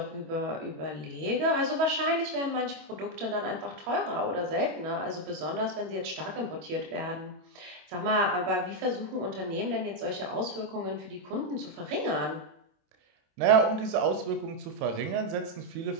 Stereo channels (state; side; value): late; left; 27 ms